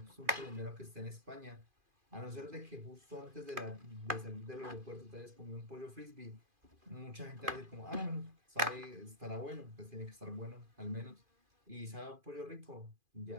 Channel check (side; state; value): left; late; 2.5 ms